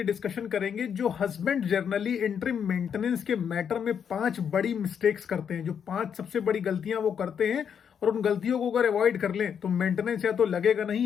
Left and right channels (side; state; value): right; quieter; 7.7 dB